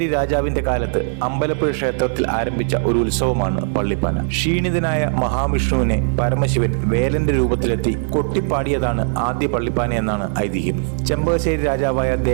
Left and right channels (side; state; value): left; silent; 56 dB below the other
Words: രാജാവിന്റെ കാലത്ത് അമ്പലപ്പുഴ ക്ഷേത്രത്തിൽ ആരംഭിച്ച ഒരു ഉത്സവമാണ് പള്ളിപ്പാന. ക്ഷീണിതനായ മഹാവിഷ്ണുവിനെ പരമശിവൻ വേലന്റെ രൂപത്തിലെത്തി കൊട്ടിപ്പാടിയതാണ് ആദ്യ പള്ളിപ്പാന എന്നാണ് ഐതിഹ്യം. ചെമ്പകശ്ശേരി രാജാവായ